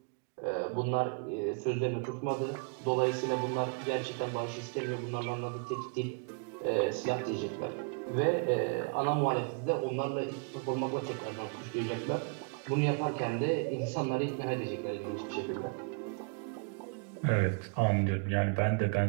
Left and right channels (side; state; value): left; quieter; 37.2 dB